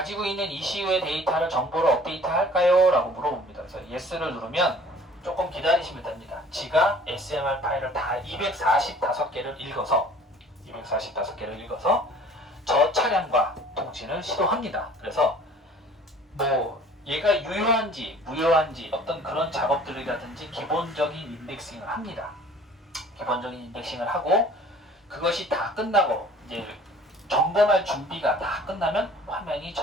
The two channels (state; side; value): normal; both; correlation 0.50